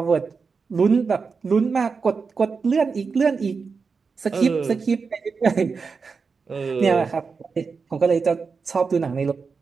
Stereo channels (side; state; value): left; quieter; 5.0 dB